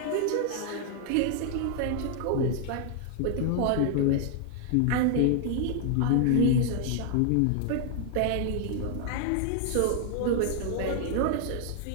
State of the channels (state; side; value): different; both; correlation 0.00